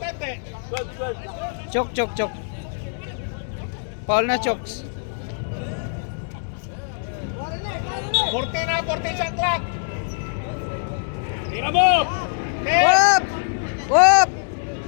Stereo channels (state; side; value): silent; right; digital silence